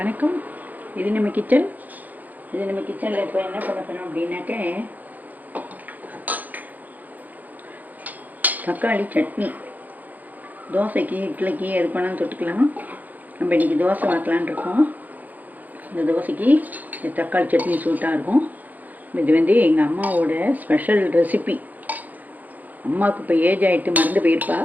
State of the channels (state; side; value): late; left; 0.082 ms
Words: இது நம்ம கிச்சன். கிச்சனில் இப்போ என்ன பண்ண போகிறோம் அப்படின்னாக்க தக்காளி சட்னி. தோசைக்கு இட்லிக்கு எது பண்ணாலும் தொட்டுக்கலாம். நம்ம இன்றைக்கி தோசை வாக்கலான் இருக்கோம். இந்த தோசைக்கு இந்த தக்காளி சட்னி சூட்டாக இருக்கும். இது எங்கள் அம்மாவோட ஸ்பெஷல் ரெசிபி. அம்மாவுக்கு இப்போ ஏஜ் ஆகிட்டு மறந்து போயிருப்பா.